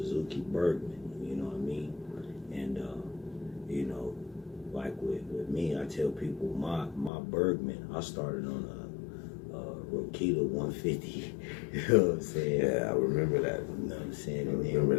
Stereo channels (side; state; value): right; drops out; at 7.1 s